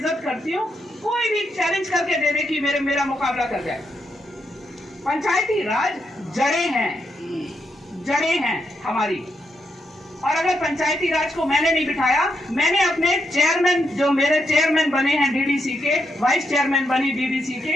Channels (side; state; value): both; normal; correlation 0.81